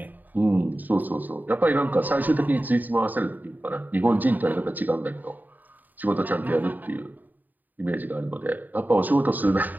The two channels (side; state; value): left; late; 0.087 ms